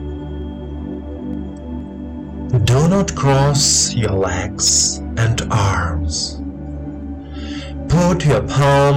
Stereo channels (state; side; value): identical; both; correlation 1.00